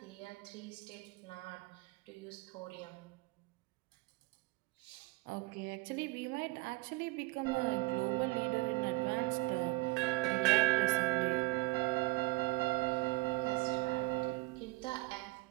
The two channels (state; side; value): quieter; left; 23.0 dB